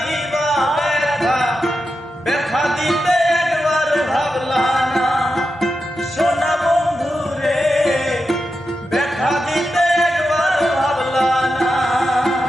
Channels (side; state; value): both; normal; correlation 0.89